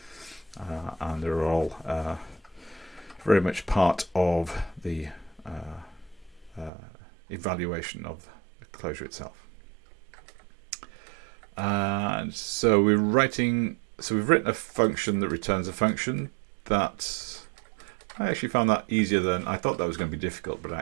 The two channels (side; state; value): left; drops out; at 6.7 s